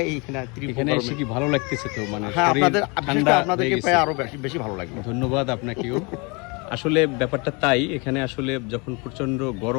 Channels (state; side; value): quieter; right; 29.7 dB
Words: এইখানে তীব্র এখানে এসে গরমে। কি ভালো লাগতেছে তো? মানে হ্যাঁ, শরীর বিশেষ ঠান্ডা করে আপনাদেরকে হয়ে পাই গেছে। আরো বেশি ভালো লাগলো। ধন্যবাদ আপনাকেও। আসলে ব্যাপারটা তাই, এখানে আসলে যখন প্রচন্ড